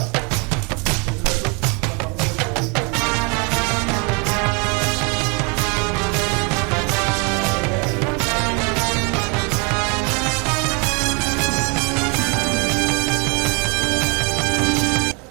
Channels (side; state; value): left; quieter; 32.7 dB